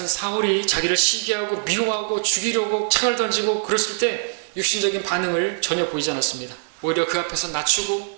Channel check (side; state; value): left; silent; digital silence